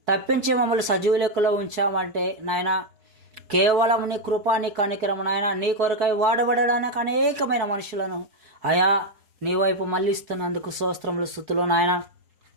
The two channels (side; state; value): left; late; 4.6 ms